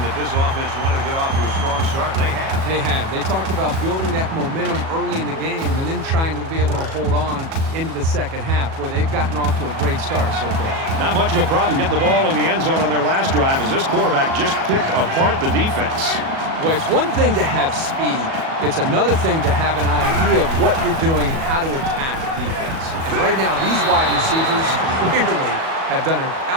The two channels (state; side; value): late; left; 37 ms